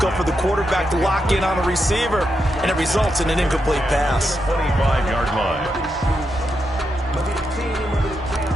for the quarterback to lock in on a receiver. And it results in an incomplete pass. 25-yard line.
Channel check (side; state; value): both; normal; correlation 0.84